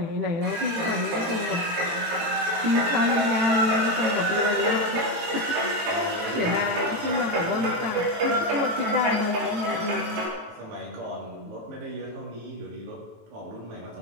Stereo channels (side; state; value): left; late; 18 ms